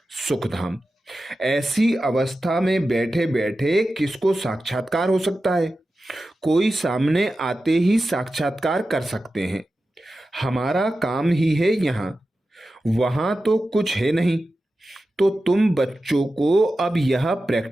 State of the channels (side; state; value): both; normal; correlation 0.93